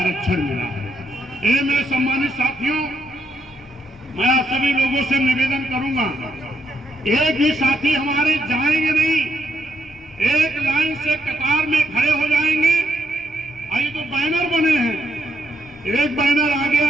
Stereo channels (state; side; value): normal; both; correlation 0.76